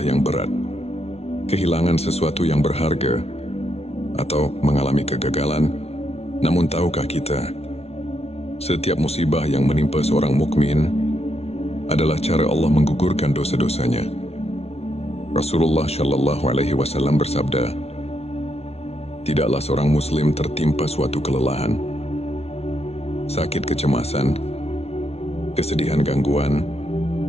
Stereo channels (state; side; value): late; right; 0.30 ms